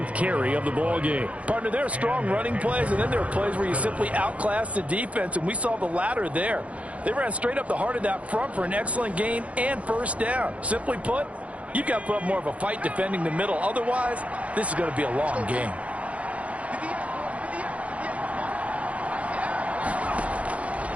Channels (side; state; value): left; late; 0.065 ms